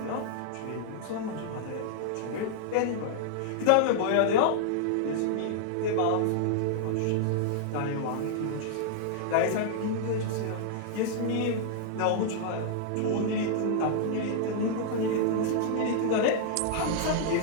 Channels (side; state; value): both; different; correlation -0.01